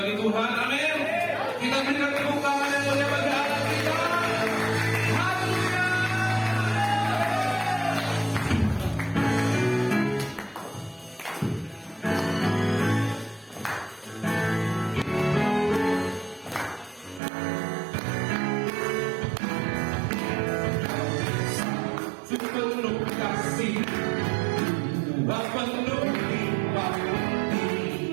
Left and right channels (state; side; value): drops out; left; at 17.2 s